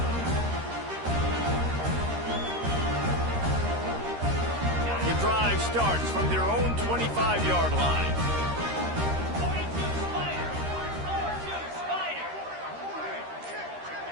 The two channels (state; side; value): late; left; 13 ms